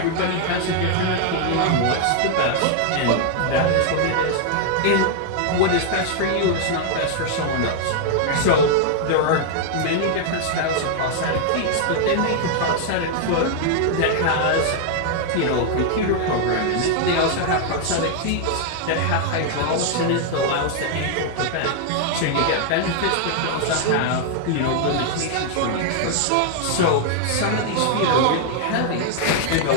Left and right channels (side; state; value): both; different; correlation 0.00